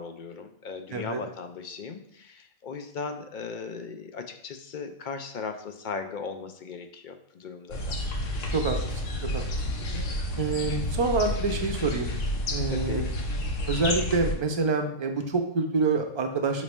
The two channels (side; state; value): right; late; 1.2 ms